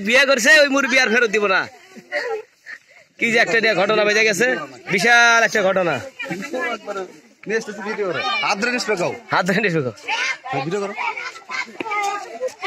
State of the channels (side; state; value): both; identical; correlation 1.00